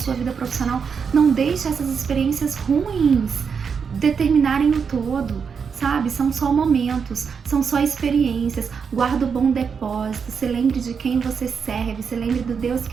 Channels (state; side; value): quieter; left; 6.2 dB